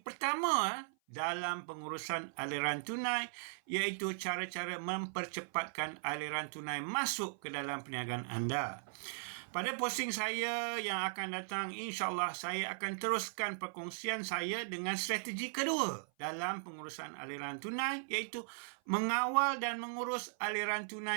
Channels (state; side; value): silent; left; 52 dB below the other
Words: dalam pengurusan aliran tunai, iaitu cara-cara mempercepatkan aliran tunai masuk ke dalam perniagaan anda. Pada posting saya yang akan datang, insyaAllah saya akan teruskan perkongsian saya dengan strategi kedua dalam pengurusan aliran tunai, iaitu mengawal dan mengurus aliran